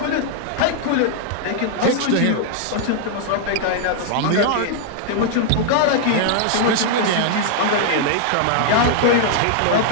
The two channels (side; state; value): both; different; correlation -0.01